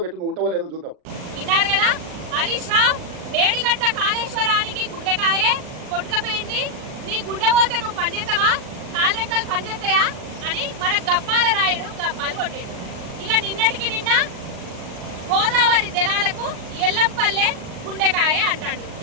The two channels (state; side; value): late; left; 39 ms